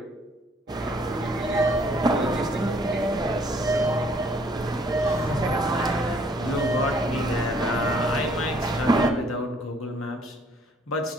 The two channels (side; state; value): both; normal; correlation 0.63